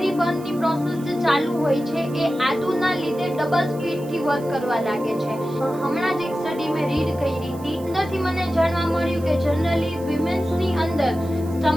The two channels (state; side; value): noise; right; hiss, 22 dB below the sound